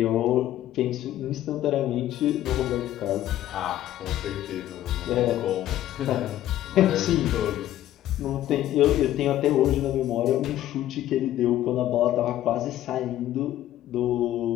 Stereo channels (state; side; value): quieter; right; 13.2 dB